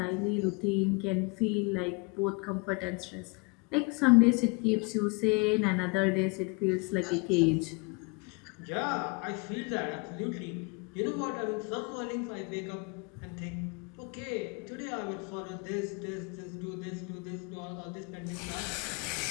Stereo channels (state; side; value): quieter; right; 30.7 dB